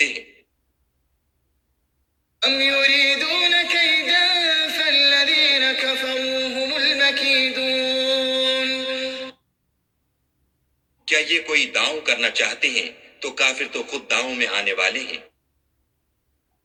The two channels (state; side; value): identical; both; correlation 1.00